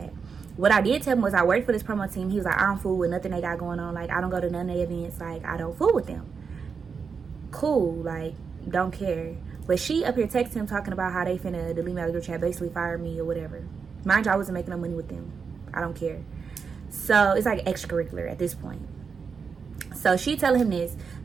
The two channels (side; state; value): left; quieter; 5.7 dB